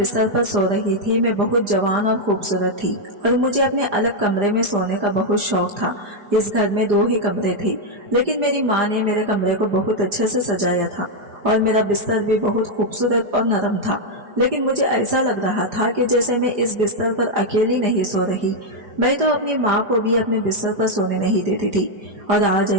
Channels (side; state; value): left; late; 4.9 ms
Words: पर सो रही थी। मैं बहुत जवान और खूबसूरत थी और मुझे अपने अलग कमरे में सोने का बहुत शौक था। इस घर में 2 ही कमरे थे, लेकिन मेरी माँ ने मेरे कमरे को बहुत अच्छे से सजाया था और मेरा बिस्तर भी बहुत खूबसूरत और नरम था। लेकिन मुझे ऐसा लग रहा था कि जैसे मैं इस बिस्तर पर अकेली नहीं सो रही। मैं तो अपनी माँ को भी अपने बिस्तर पर सोने नहीं देती थी और आज